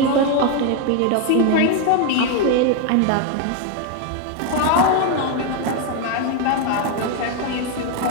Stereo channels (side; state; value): both; different; correlation 0.01